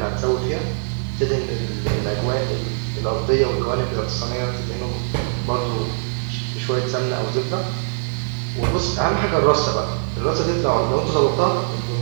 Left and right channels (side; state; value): left; silent; digital silence